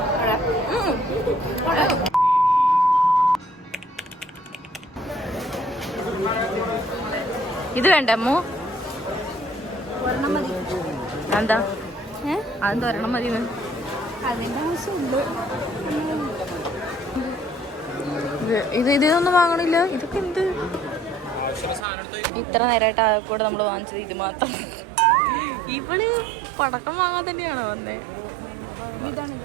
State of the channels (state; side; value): drops out; left; at 21.9 s